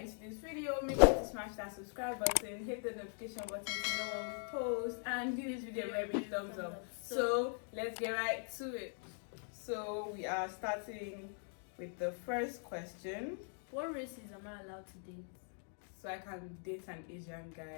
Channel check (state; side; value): silent; right; 50 dB below the other